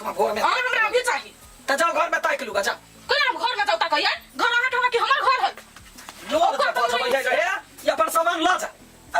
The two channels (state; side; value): identical; both; correlation 1.00